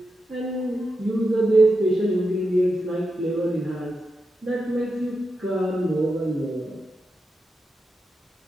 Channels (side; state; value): both; normal; correlation 0.88